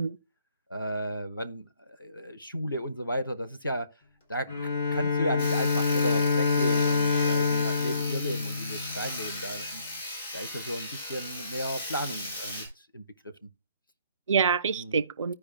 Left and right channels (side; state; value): both; inverted; correlation -0.66